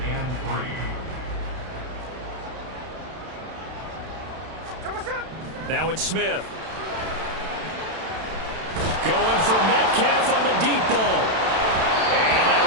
Now it's Smith. Going for Metcalf on the deep ball. And that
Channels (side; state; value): left; late; 32 ms